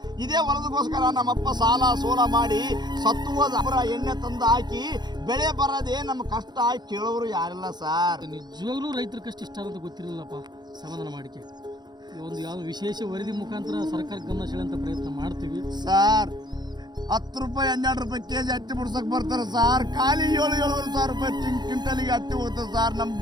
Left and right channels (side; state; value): left; late; 0.21 ms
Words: ಇದೇ ಹೊಲದಗೋಸ್ಕರ ನಮ್ಮಪ್ಪ ಸಾಲ ಸೋಲ ಮಾಡಿ ಸತ್ತು ಹೋದ ಎಣ್ಣೆ ತಂದು ಹಾಕಿ ಬೆಳೆ ಬರದೆ ನಮ್ಮ ಕಷ್ಟ ಕೇಳೋರು ಯಾರಿಲ್ಲ ಸಾರ್. ನಿಜವಾಗ್ಲೂ ರೈತರ ಕಷ್ಟ ಇಷ್ಟ ಅಂತ ಗೊತ್ತಿರಲಿಲ್ಲಪ್ಪ. ಸಮಾಧಾನ ಮಾಡಿಕೆ ಒಂದು ಯಾವ ವಿಶೇಷ ವರದಿ ಮುಖಾಂತರ ಸರ್ಕಾರ ಗಮನ ಸೆಳೆಯುವಂತ ಪ್ರಯತ್ನ ಮಾಡ್ತೀವಿ ಸಾರ್. 10 ರೂಪಾಯಿ 12 ರೂಪಾಯಿ ಕೆಜಿ ಹತ್ತಿ ಬಿಡ್ಸಕ್ ಬರ್ತಾರೆ ಸಾರ್. ಖಾಲಿ 7,000 ರೂಪಾಯಿ ಕ್ವಿಂಟಲಿಗೆ ಹತ್ತಿ ಹೋಗ್ತದೆ ಸಾರ್. ನಮ್